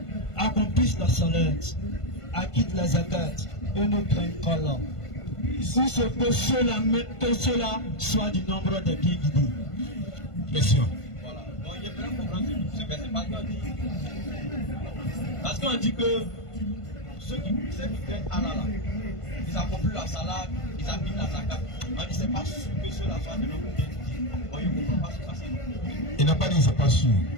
Accomplissent la salat, acquittent la zakat et ne craignent qu'Allah. Si ce que cela soit du nombre des bien guidés. Question. Voilà. Donc j'aimerais comprendre ce verset parce qu'on dit que ceux qui craignent Allah là, ils accomplissent la salat, ils acquittent la zakat. On dit c'est pas sûr que cela soit du nombre des bien guidés. On ne comprend pas ce passage. Il n'a pas dit c'est pas sûr.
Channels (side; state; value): right; late; 1.5 ms